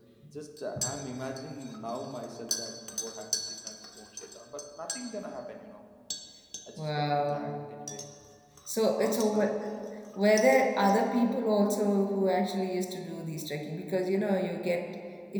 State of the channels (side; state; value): both; identical; correlation 1.00